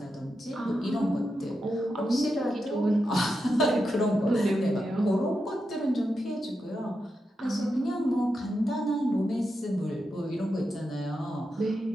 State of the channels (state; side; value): normal; both; correlation 0.87